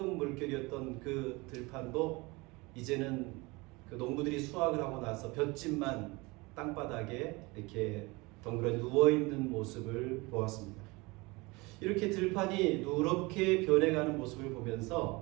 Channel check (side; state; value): left; quieter; 24.6 dB